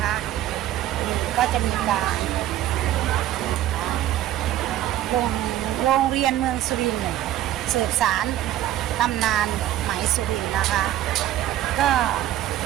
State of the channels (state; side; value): quieter; left; 13.1 dB